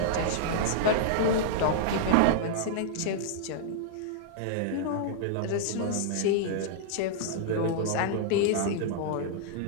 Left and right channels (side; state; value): both; different; correlation -0.02